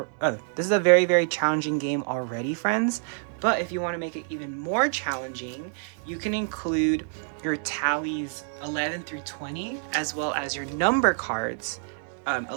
is a very, very challenging game already, friends. But if you want to make it even more challenging, you can include your tallies 11 through 20, as well as your number cards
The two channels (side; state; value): left; silent; 60 dB below the other